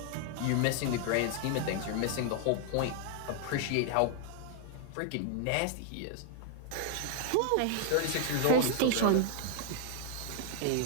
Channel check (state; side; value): different; both; correlation 0.00